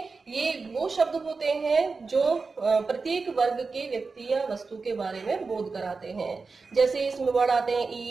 ये वो शब्द होते हैं जो प्रत्येक वर्ग के व्यक्ति या वस्तु के बारे में बोध कराते हैं। जैसे इसमें वर्ड आते हैं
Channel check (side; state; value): left; quieter; 4.3 dB